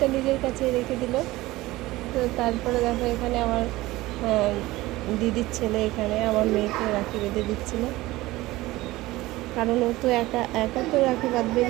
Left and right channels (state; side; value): quieter; left; 18.6 dB